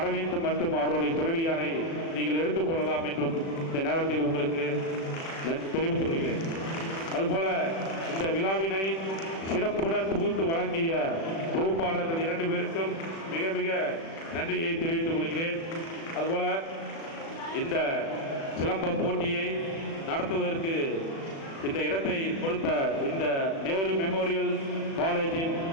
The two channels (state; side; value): late; right; 36 ms